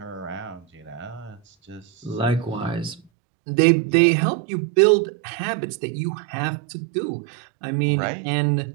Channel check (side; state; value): left; drops out; at 3.0 s